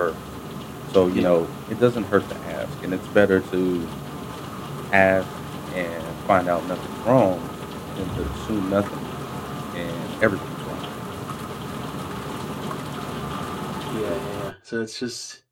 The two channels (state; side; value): identical; both; correlation 1.00